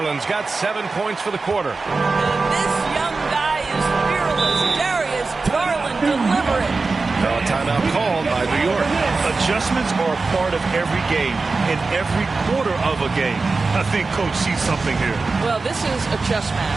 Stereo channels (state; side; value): quieter; left; 3.9 dB